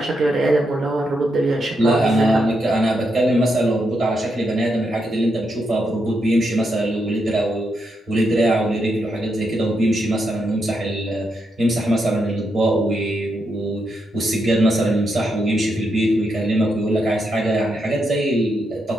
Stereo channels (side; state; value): both; normal; correlation 0.82